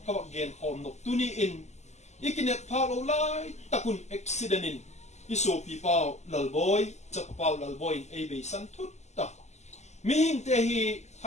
kawak gen hom no tuni in ikinet phalo lai takun accident in iso pi pau lalboy chap pau lalboy ei be san thut ta mi hing te hi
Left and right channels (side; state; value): right; late; 0.33 ms